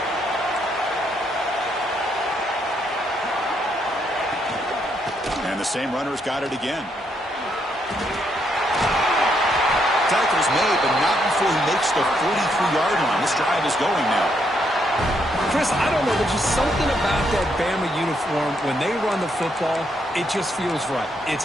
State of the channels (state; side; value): normal; both; correlation 0.75